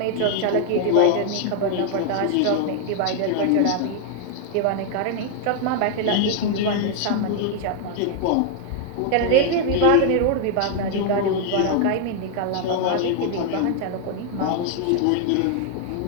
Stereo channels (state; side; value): different; both; correlation 0.00